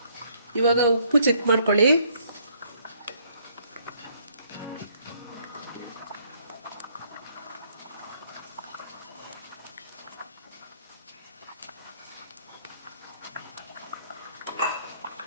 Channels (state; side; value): inverted; both; correlation -0.66